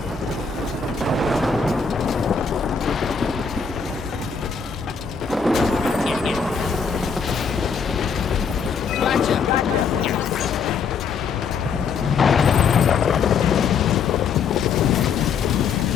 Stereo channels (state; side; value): quieter; right; 5.8 dB